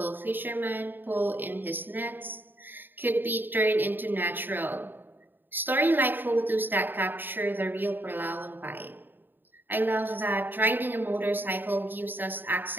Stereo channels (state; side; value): late; left; 0.093 ms